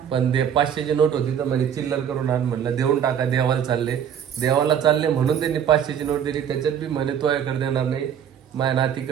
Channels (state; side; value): quieter; left; 8.6 dB